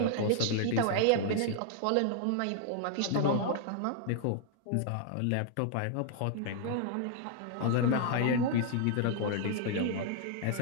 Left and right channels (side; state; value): both; different; correlation -0.01